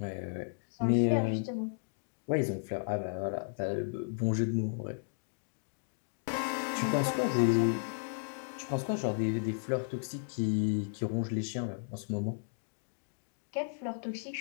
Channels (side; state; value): right; silent; digital silence